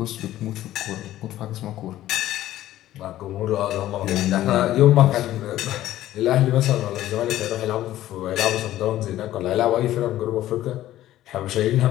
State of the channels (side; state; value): right; quieter; 14.0 dB